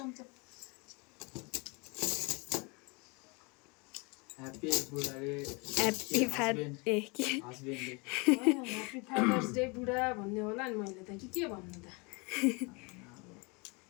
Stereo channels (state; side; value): quieter; right; 29.6 dB